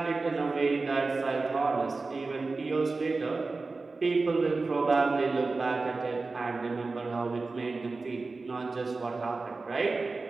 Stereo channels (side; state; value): left; quieter; 3.8 dB